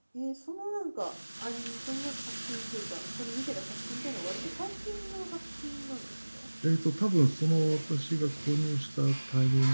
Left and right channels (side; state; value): both; inverted; correlation -1.00